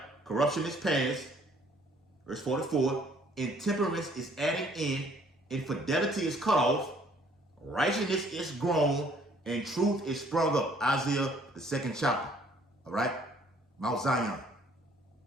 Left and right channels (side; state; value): both; normal; correlation 0.60